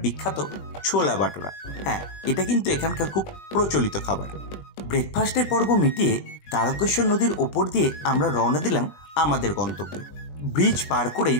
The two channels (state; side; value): late; right; 21 ms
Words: বিখ্যাত ছোলা বাটোরা। হ্যাঁ, এটা কিন্তু এখানকার খুব প্রচলিত খাবার। ব্রেকফাস্টের পর্ব মিটিয়ে তারকেশ্বর নদীর ওপর দিয়ে আমরা রওনা দিলাম আমাদের গন্তব্যে। ব্রিজ পার করেই